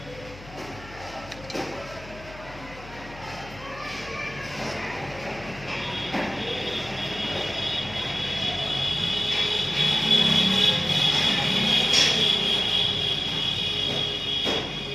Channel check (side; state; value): left; noise; hum, 18 dB below the sound